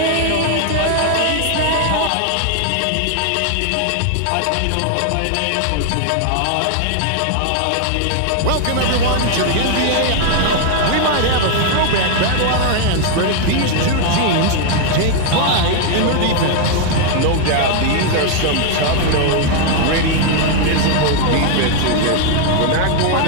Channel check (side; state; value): both; different; correlation 0.00